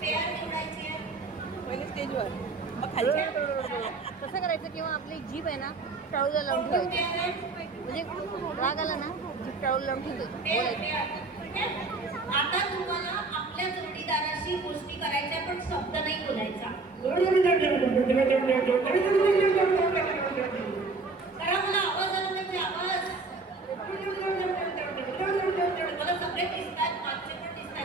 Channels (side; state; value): left; quieter; 3.8 dB